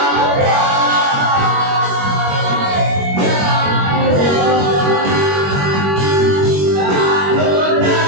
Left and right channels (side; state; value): left; late; 21 ms